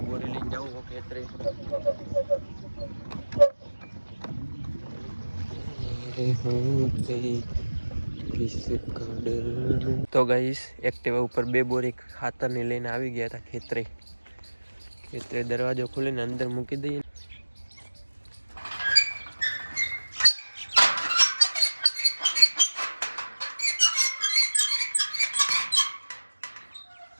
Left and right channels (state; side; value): inverted; both; correlation -1.00